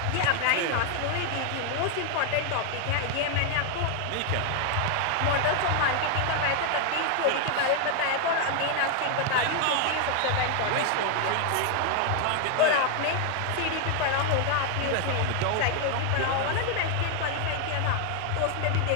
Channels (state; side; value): different; both; correlation 0.00